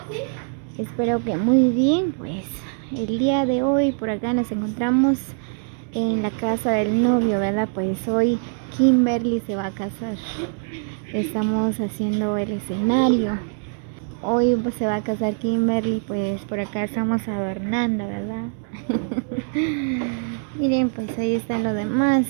Espero que muy bien. Pues el día de hoy por acá nos encontramos en la casa del novio, ¿verdad? Pues hoy Kimberly se va a casar. Estamos haciendo el escenario. Hoy pues, se va a casar Kimberly, pues por acá estamos adornando, ¿verdad? Miren, pues ahí están los demás,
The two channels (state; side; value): silent; left; 63 dB below the other